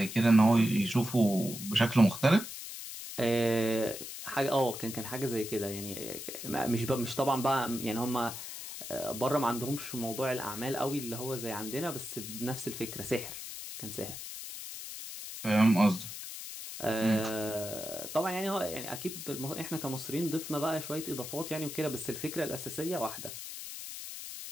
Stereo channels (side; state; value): left; noise; hiss, 9 dB below the sound